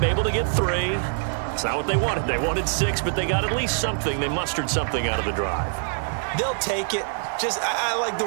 able to get 3. It's not what they wanted. They wanted 6, but they got at least something. They mustered something out of the drive. They'll take it. I like the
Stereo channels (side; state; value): left; silent; digital silence